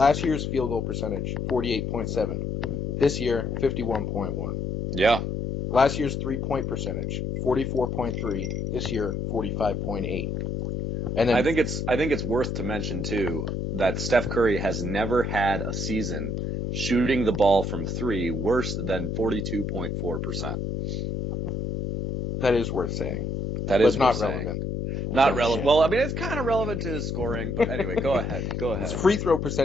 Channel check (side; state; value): left; noise; hum, 2 dB below the sound